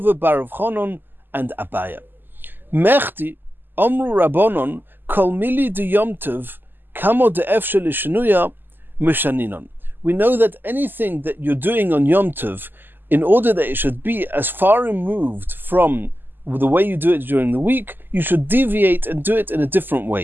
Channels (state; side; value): late; left; 0.093 ms